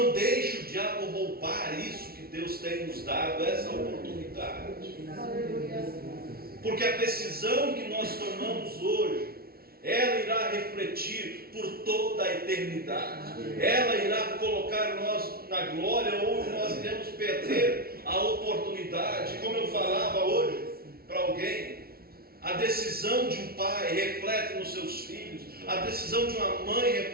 deixe o diabo roubar isso que Deus tem nos dado, essa oportunidade. Porque a decisão que nós tomamos hoje, ela irá refletir por toda a eternidade. Ela irá colocar nós na glória, ou nós iremos perder a oportunidade. Como eu falava hoje para alguém, a decisão de um pai reflete nos seus filhos, a decisão de uma mãe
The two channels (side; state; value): left; late; 0.44 ms